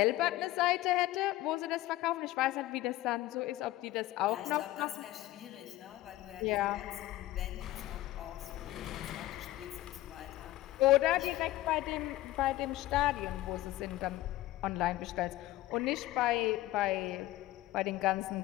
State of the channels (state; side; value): quieter; right; 16.1 dB